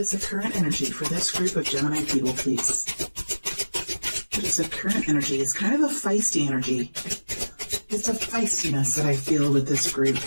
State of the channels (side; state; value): both; inverted; correlation -1.00